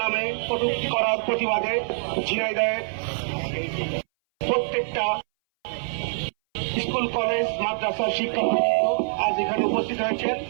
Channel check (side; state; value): left; silent; 60 dB below the other